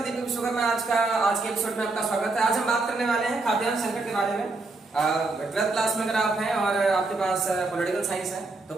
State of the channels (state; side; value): quieter; left; 3.4 dB